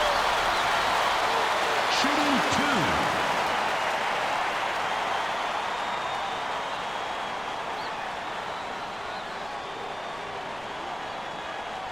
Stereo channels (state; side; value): noise; left; rumble, 22 dB below the sound